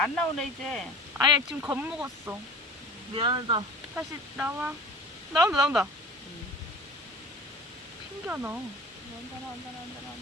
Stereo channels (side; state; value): both; normal; correlation 0.38